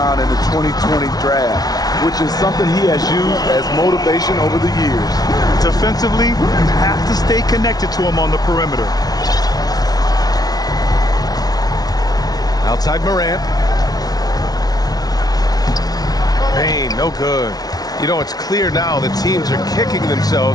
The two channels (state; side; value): late; right; 0.19 ms